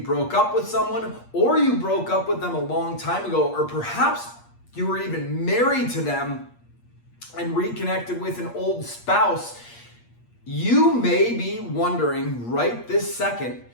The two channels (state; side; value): late; right; 8.5 ms